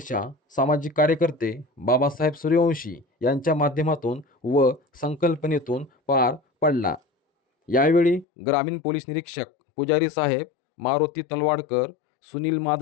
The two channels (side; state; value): right; drops out; at 8.2 s